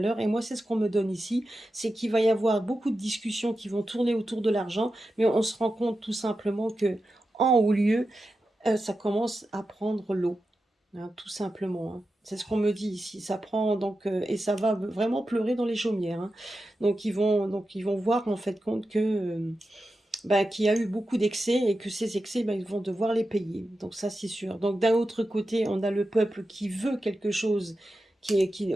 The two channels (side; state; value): both; normal; correlation 0.91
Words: Et moi, c'est ce qu'on me donne ici, c'est qu'il va y avoir beaucoup de discussions qui vont tourner autour de l'argent, mais on se rend compte tout simplement que, en haut lieu, ça commence à prendre l'eau, hein, tout simplement, hein. C'est ce qu'on me dit ici. Ça prend donc et ça va vraiment pleurer dans les chaumières, hein. Donc ils vont voir en fait compte que bah, qu'il y a eu beaucoup d'excès et que ces excès, bah, ils vont devoir les payer. Donc ça, c'est sûr. Donc d'un autre côté, on a le peuple qui veut quelque chose, qui